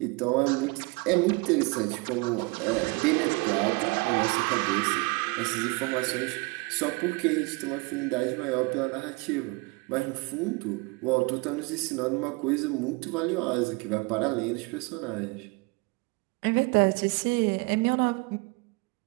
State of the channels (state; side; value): quieter; left; 27.5 dB